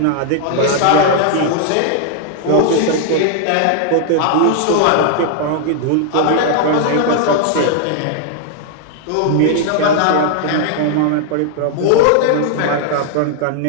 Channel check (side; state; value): both; different; correlation 0.00